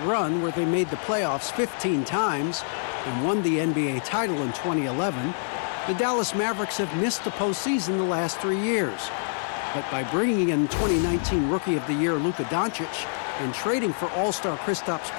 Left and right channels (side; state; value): right; silent; 61 dB below the other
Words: run where they made the playoffs 15 times and won the NBA title in 2011, the Dallas Mavericks have missed the postseason the last 3 years. But by bringing in 2019 Rookie of the Year Luka Doncic and trading for All-Star Kristaps